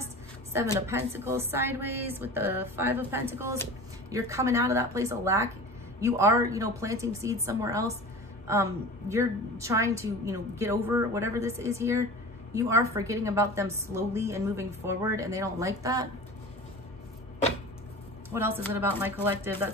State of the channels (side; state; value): both; normal; correlation 0.36